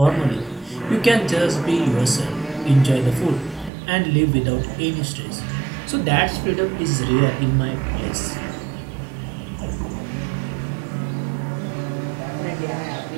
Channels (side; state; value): left; drops out; at 3.7 s